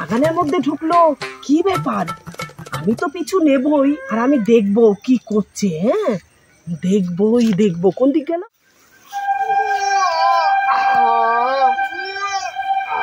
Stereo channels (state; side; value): identical; both; correlation 1.00